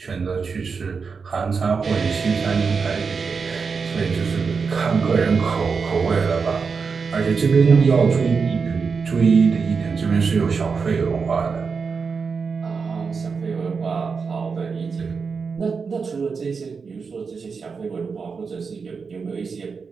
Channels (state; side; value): quieter; left; 5.3 dB